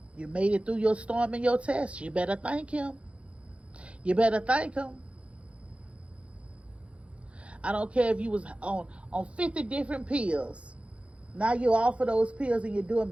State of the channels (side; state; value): left; late; 0.061 ms